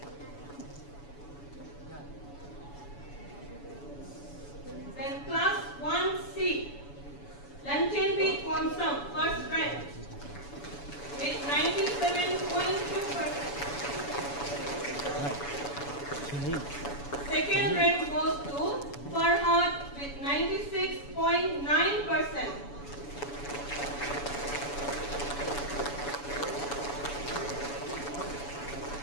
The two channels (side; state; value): right; late; 7.0 ms